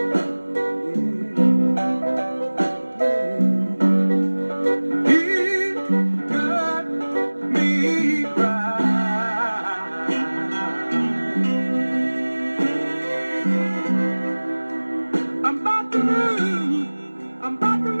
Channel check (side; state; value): both; inverted; correlation -1.00